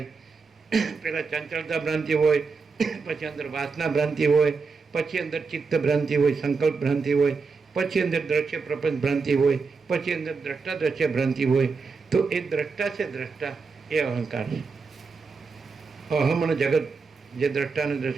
પહેલાં ચંચળતા ભ્રાંતિ હોય, પછી અંદર વાસના ભ્રાંતિ હોય, પછી અંદર ચિત્ત ભ્રાંતિ હોય, સંકલ્પ ભ્રાંતિ હોય, પછી અંદર દ્રશ્ય પ્રપંચ ભ્રાંતિ હોય, પછી અંદર દ્રષ્ટા દ્રશ્ય ભ્રાંતિ હોય. તો એ દ્રષ્ટા છે, દ્રષ્ટા એ અહંકાર છે. અહમ અને જગત જે દ્રષ્ટા અને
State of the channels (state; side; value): quieter; left; 4.7 dB